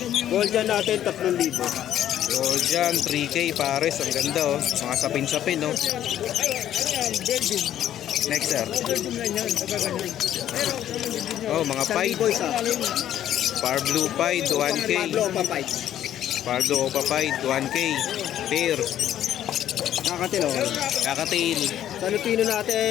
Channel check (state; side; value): quieter; right; 11.4 dB